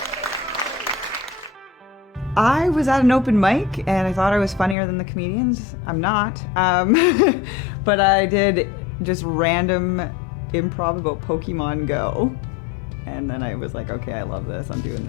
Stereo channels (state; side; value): drops out; right; at 4.8 s